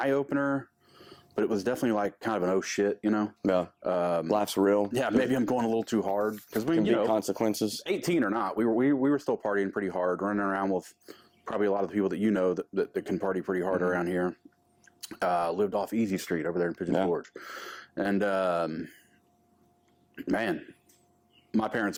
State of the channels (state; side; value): identical; both; correlation 1.00